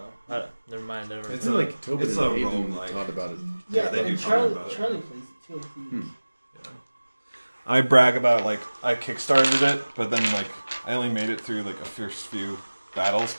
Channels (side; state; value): both; inverted; correlation -1.00